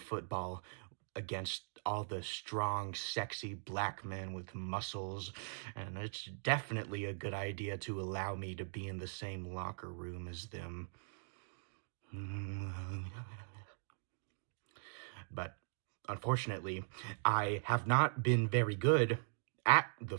against all the strong, sexy black men with muscles, and it's definitely a good idea to allow me to be in the same locker room as them. But unfortunately, I have not been very good at the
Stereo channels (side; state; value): left; silent; digital silence